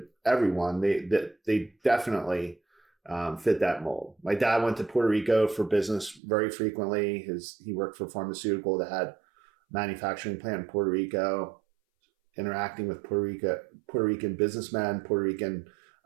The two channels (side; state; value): left; drops out; at 6.2 s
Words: everyone, they definitely fit that mold. My dad went to Puerto Rico for business very frequently. He worked for a pharmaceutical that had a manufacturing plant in Puerto Rico, interacting with Puerto Rican businessmen, Puerto Rican